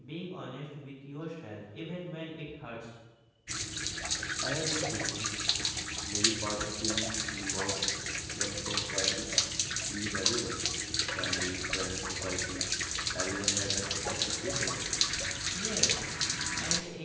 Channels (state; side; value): identical; both; correlation 1.00